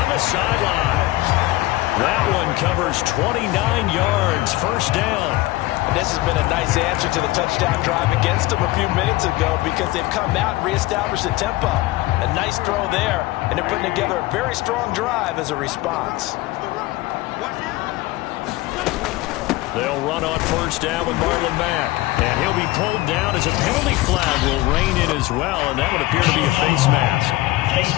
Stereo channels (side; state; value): right; quieter; 18.8 dB